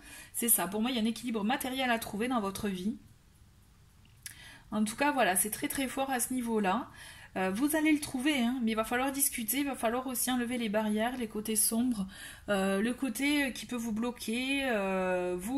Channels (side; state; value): both; identical; correlation 1.00